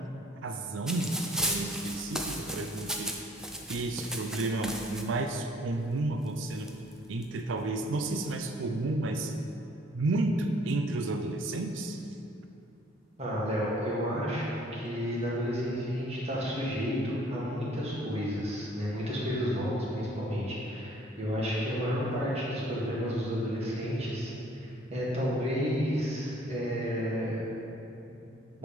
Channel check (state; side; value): normal; both; correlation 0.58